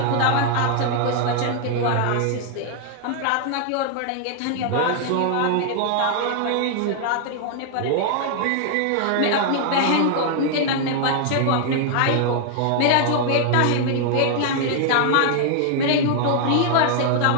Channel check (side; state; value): both; different; correlation 0.00